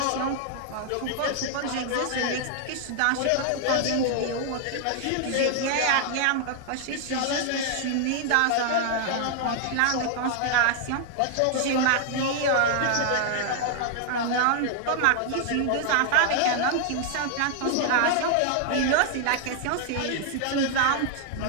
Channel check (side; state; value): both; different; correlation 0.00